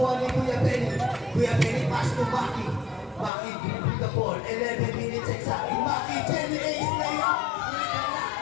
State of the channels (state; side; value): drops out; right; at 3.3 s